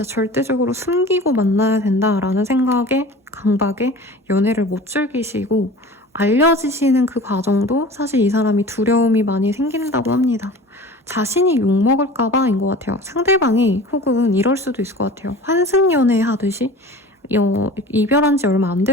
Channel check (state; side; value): normal; both; correlation 0.39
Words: 절대적으로 숨기고 만나야 된다라는 생각에 강박에 연애를 못 즐기시고 알려지시는 그 과정도 사실 이 사람이 두려움이 많이 생긴다고 합니다. 자신이 욕먹을까봐인 것 같아요. 상대방이 혹은 이럴 수도 있을 것 같아요. 환승연애 하듯이 이별한 지 얼마 안